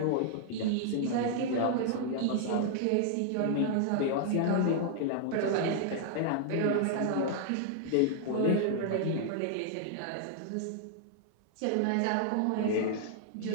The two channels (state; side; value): different; both; correlation -0.01